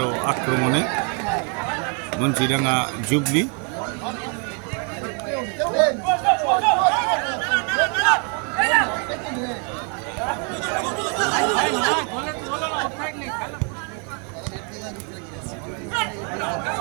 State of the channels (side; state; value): left; quieter; 38.5 dB